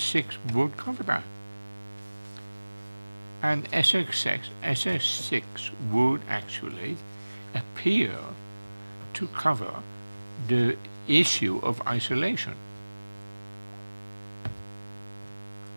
would cover that. And SS6 would actually appear to cover the issue of isolation.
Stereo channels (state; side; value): inverted; both; correlation -1.00